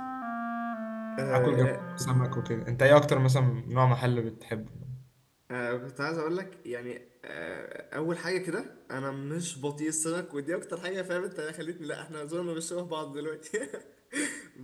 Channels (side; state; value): both; identical; correlation 1.00